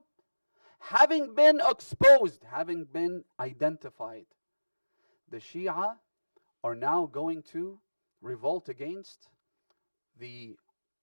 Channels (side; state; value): both; inverted; correlation -1.00